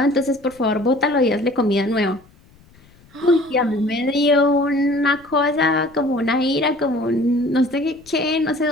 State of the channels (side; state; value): left; noise; rumble, 28 dB below the sound